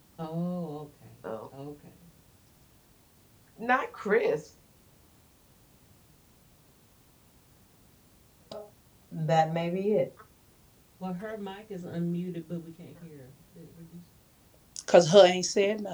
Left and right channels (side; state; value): both; identical; correlation 1.00